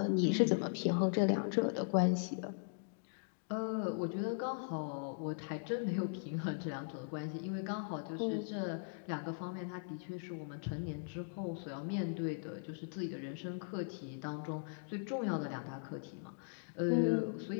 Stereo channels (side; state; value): right; silent; digital silence